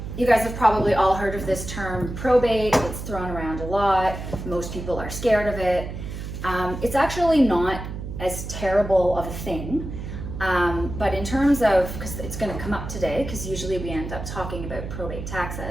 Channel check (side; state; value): right; noise; hum, 8 dB below the sound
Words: you guys have probably all heard of this term probate. It's thrown around a lot. Most people are scared of it. It's actually not as terrible of a thing. But in terms of, because it's going to come up today, because usually we end up talking about probate